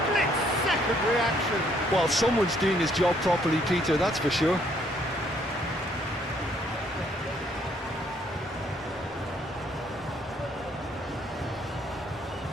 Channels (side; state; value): both; normal; correlation 0.67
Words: reaction. Well, someone's doing his job properly, Peter, that's for sure.